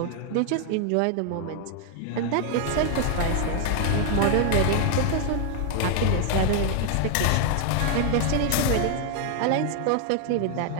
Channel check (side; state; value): both; different; correlation 0.00